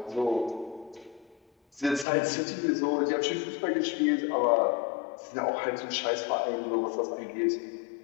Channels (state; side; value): drops out; right; at 2.1 s